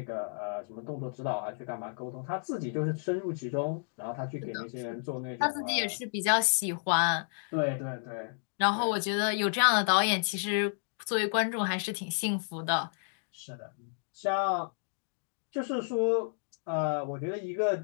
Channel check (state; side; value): silent; right; digital silence